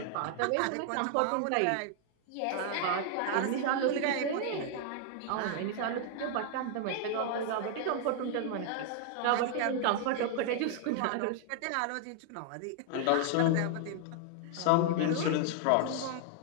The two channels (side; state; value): both; different; correlation 0.00